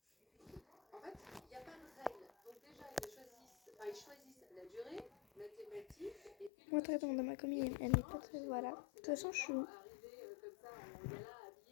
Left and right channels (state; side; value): drops out; right; at 6.5 s